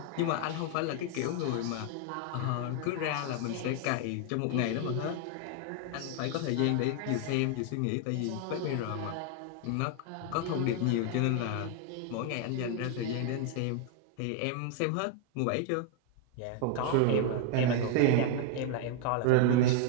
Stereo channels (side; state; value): both; different; correlation 0.00